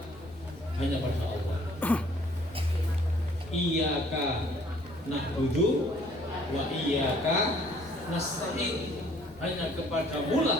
hanya pada Allah. Iyyaka na'budu wa iyyaka nasta'in. Hanya kepadamu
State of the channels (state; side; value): noise; left; rumble, 23 dB below the sound